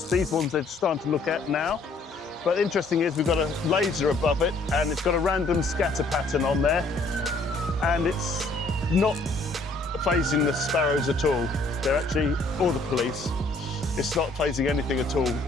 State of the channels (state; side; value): quieter; right; 3.0 dB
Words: These ones they're starting to look at now. But interesting is we've got a laser above it and it's got a random scatter pattern on there, and it's not phasing the sparrows at all. They're actually, or the police, it's not phasing anything at all.